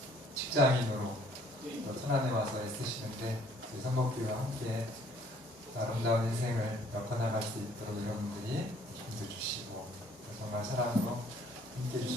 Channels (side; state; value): both; normal; correlation 0.59